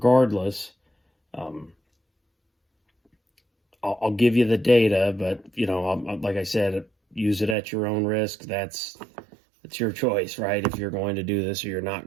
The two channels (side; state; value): left; drops out; at 7.6 s